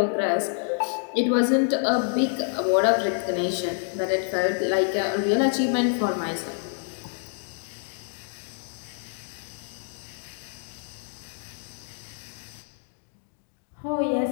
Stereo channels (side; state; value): right; silent; 59 dB below the other